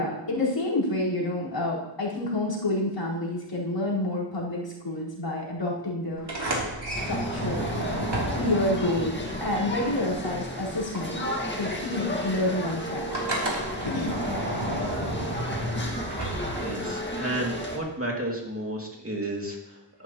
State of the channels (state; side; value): normal; both; correlation 0.05